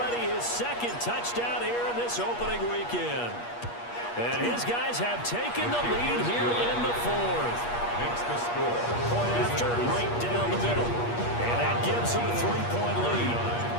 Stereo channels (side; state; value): right; late; 8.4 ms